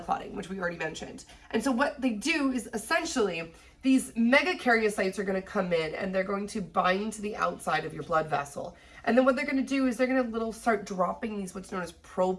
clotting, which we already mentioned. And so what they do is essentially these megakaryocytes are going to come in and they're going to bind to the outside of your blood vessel. And then what they're going to do is they're going to start dropping these what's known as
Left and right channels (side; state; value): both; identical; correlation 1.00